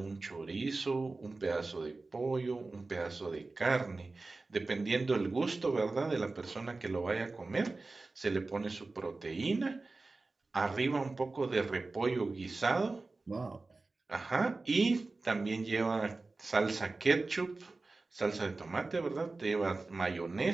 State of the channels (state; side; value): quieter; left; 3.5 dB